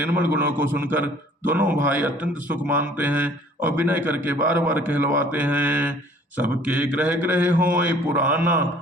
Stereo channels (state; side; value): normal; both; correlation 0.54